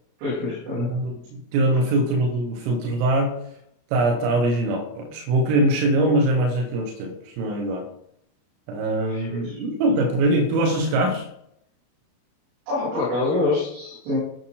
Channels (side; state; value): left; late; 33 ms